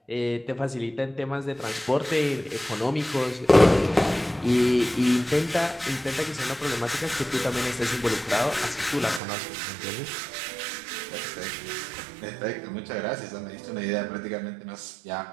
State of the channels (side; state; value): left; drops out; at 9.2 s